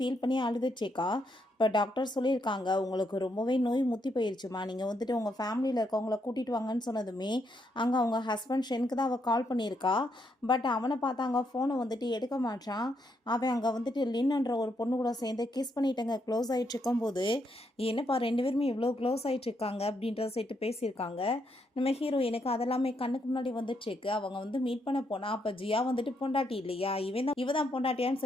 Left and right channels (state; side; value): normal; both; correlation 0.77